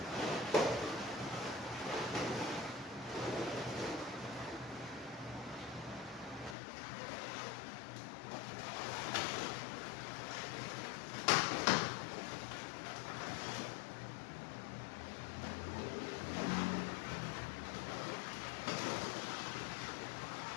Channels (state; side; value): drops out; right; at 6.6 s